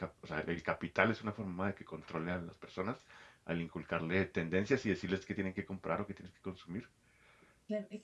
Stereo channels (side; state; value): both; identical; correlation 1.00